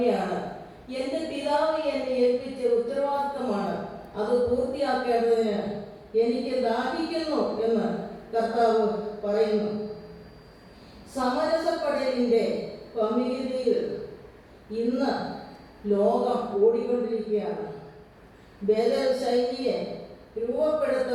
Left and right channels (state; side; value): identical; both; correlation 1.00